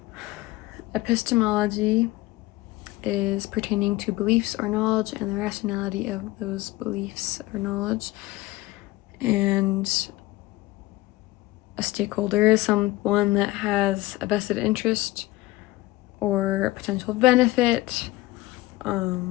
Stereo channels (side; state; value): right; quieter; 19.0 dB